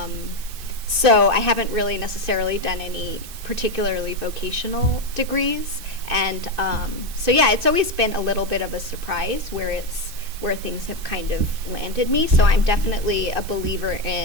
So I haven't really necessarily done any particularly vocational degrees, and so yeah, it's always been a little bit of a surprise where things have kind of landed me. So I'm definitely a believer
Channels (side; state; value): left; late; 2.6 ms